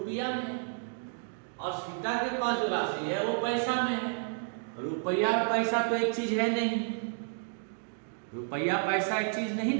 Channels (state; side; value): silent; left; 57 dB below the other